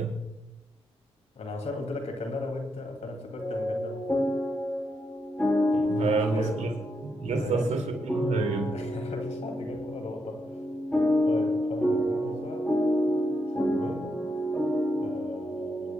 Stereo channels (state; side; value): normal; both; correlation 0.81